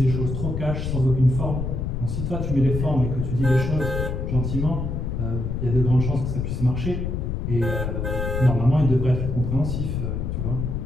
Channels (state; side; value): noise; left; rumble, 2 dB below the sound